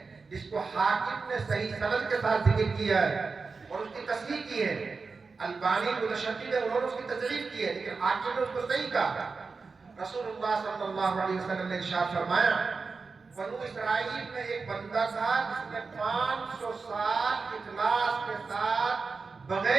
جس کو حاکم نے صحیح سند کے ساتھ ذکر کیا ہے اور اس کی تصحیح کی ہے، البانی متشدد ہے، انہوں نے اس کی تضعیف کی ہے، لیکن حاکم نے اس کو صحیح کہا۔ رسول اللہ صلی اللہ علیہ وسلم نے ارشاد فرمایا، بنو اسرائیل میں ایک بندہ تھا جس نے 500 سال اخلاص کے ساتھ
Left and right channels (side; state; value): left; quieter; 4.5 dB